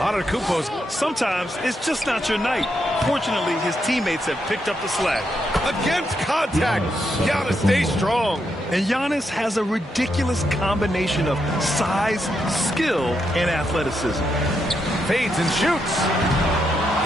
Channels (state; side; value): normal; both; correlation 0.81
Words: Sometimes it's just not your night. Fortunately, his teammates have picked up the slack. Against contact. Giannis stays strong. And Giannis has a ridiculous combination of size, skill, and athleticism. Fades and shoots.